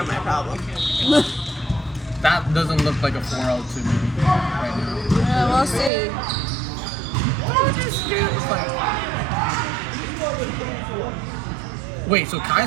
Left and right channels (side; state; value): left; drops out; at 5.9 s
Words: my problem. That doesn't look like a 4-0 to me right now. We'll see. Wait, so